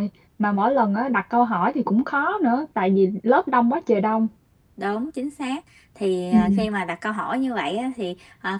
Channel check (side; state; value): both; identical; correlation 1.00